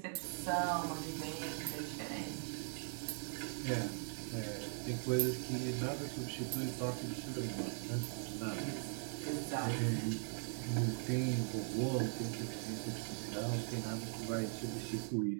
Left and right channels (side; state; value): left; silent; 51 dB below the other